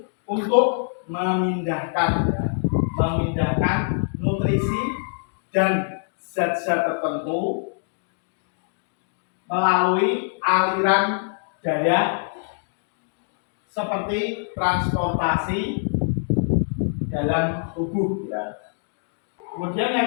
untuk memindahkan nutrisi dan zat-zat tertentu melalui aliran darah seperti transportasi dalam tubuh ya. Kemudian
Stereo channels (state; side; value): silent; right; digital silence